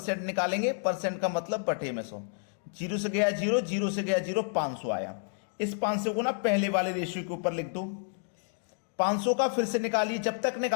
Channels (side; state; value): right; silent; 58 dB below the other